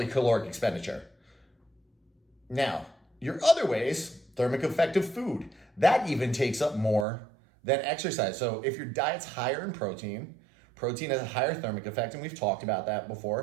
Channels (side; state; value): left; drops out; at 7.1 s